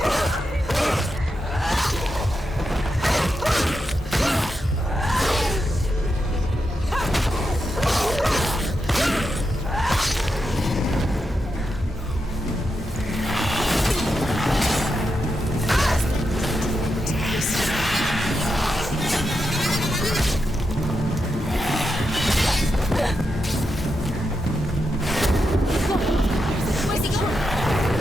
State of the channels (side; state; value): both; normal; correlation 0.86